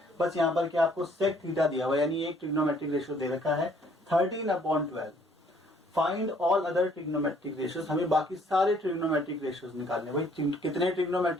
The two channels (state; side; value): normal; both; correlation 0.61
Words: बस यहाँ पर क्या आपको सेक थीटा दिया हुआ है, यानी एक ट्रिग्नोमेट्रिक रेशियो दे रखा है 13/12। Find all other trigonometric ratios, हमें बाकी सारे ट्रिग्नोमेट्रिक रेशियोज निकालने। भाई कितने